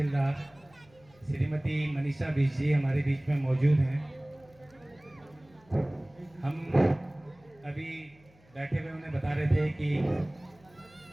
श्रीमती मनीषा बीज जी हमारे बीच में मौजूद हैं। हम अभी बैठे हुए उन्हें बता रहे थे कि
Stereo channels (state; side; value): noise; left; hum, 29 dB below the sound